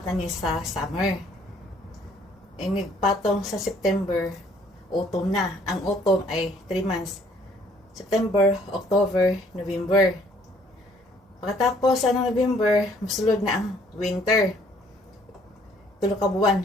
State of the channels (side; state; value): both; normal; correlation 0.61